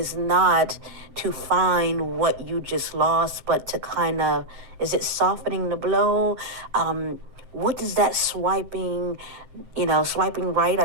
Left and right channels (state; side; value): late; left; 7.8 ms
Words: not to find what you just lost, but to kind of, is it softening the blow? What does that swiping right,